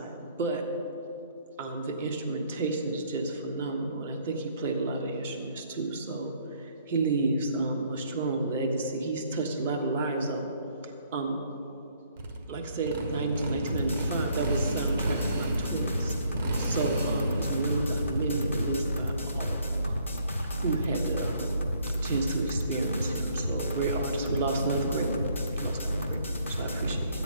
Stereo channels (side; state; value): both; inverted; correlation -0.65